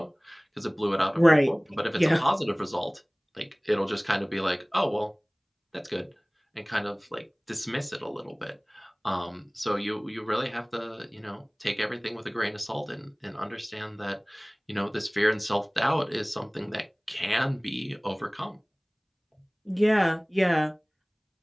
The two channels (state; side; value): identical; both; correlation 1.00